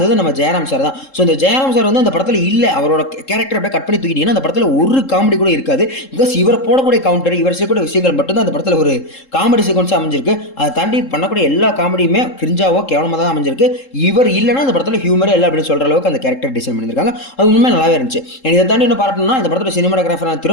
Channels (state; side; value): late; right; 3.7 ms